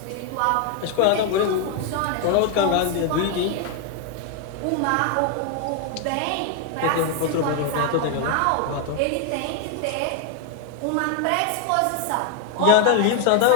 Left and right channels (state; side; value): different; both; correlation 0.01